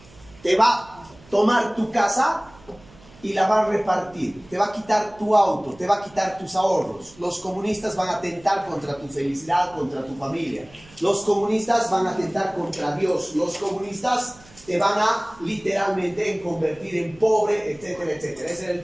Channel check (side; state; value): right; noise; hum, 24 dB below the sound